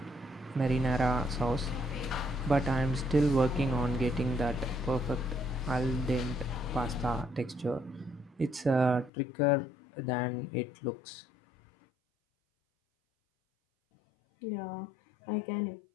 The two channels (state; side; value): drops out; right; at 9.1 s